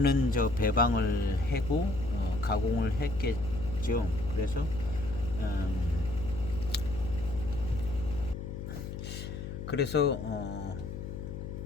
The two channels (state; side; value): noise; left; hum, 7 dB below the sound